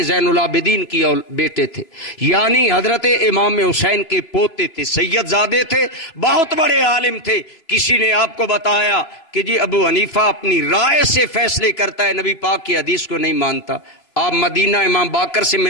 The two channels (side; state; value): right; late; 3.0 ms